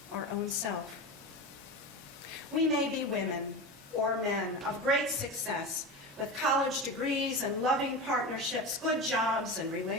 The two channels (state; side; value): normal; both; correlation 0.24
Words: our own self. We may be women or men of great success, with college degrees and loving partnerships, good jobs and